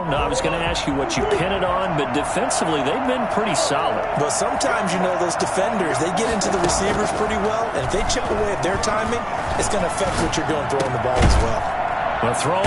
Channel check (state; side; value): identical; both; correlation 1.00